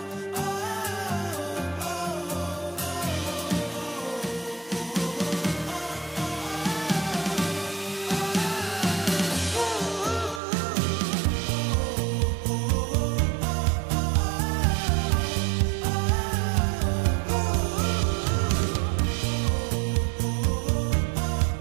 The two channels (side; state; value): left; drops out; at 10.4 s